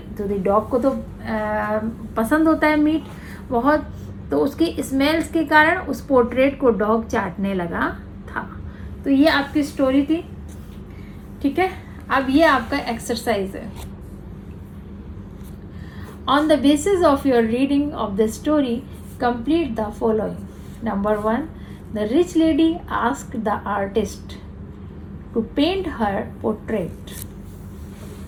तो डॉग को तो पसंद होता है मीट बहुत, तो उसकी स्मेल्स के कारण उस पोर्ट्रेट को डॉग चाटने लगा था। तो ये आपकी स्टोरी थी, ठीक है। अब ये आपका एक्सरसाइज है। On the basis of your reading of the story complete the following. Number 1, the rich lady asked the artist to paint her portrait.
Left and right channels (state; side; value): identical; both; correlation 1.00